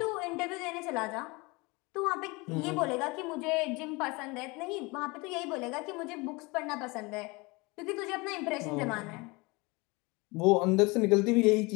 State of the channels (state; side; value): quieter; right; 25.7 dB